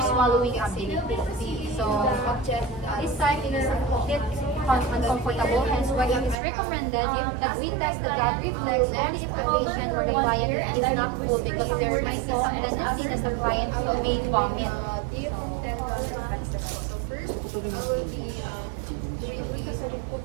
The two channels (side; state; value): left; drops out; at 6.4 s